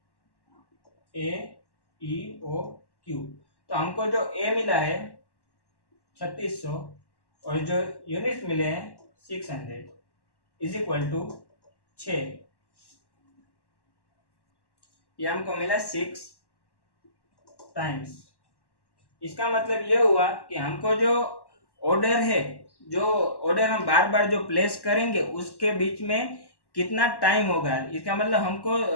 AEOQ। तो हमको जो ए मिला है 3600 और जो यूनिट्स मिले हैं 600 इज इक्वल टू 6, ये हमको मिला 6 टाइम्स। इसका मतलब ये हुआ कि हमको जो ऑर्डर है, जो ऑर्डर हम बार बार जो प्लेस करेंगे उसके बीच में कितना टाइम होगा। इसका मतलब हमको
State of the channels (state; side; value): late; right; 1.1 ms